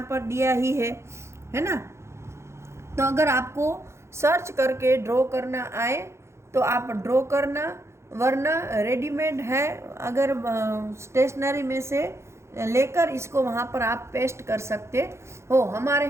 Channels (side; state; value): left; late; 0.13 ms